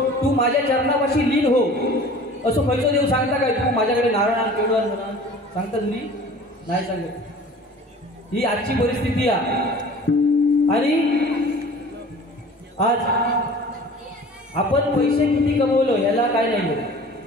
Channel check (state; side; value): normal; both; correlation 0.44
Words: तू माझ्या चरणापाशी लीन हो. असं खयचं देव सांगता काय? तू माझ्याकडे नारळ आण, पेढे आण म्हणा सांगता तुम्ही? नाही सांगत. ही आजची परिस्थिती आहे. आणि आज आपण पैसे किती कमवलो याला काय नाही,